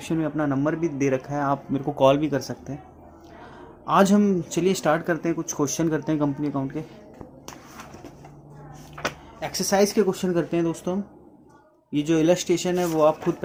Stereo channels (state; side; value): identical; both; correlation 1.00